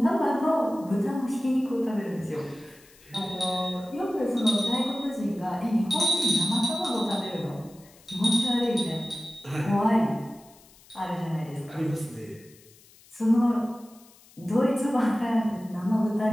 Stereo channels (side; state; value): left; noise; hiss, 26 dB below the sound